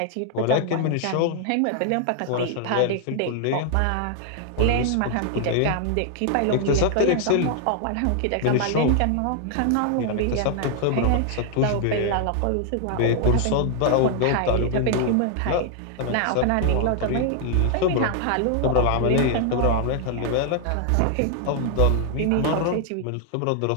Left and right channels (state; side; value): different; both; correlation 0.00